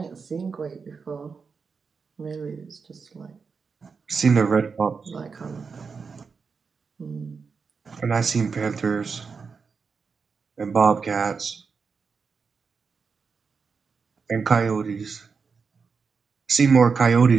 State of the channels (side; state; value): left; quieter; 5.3 dB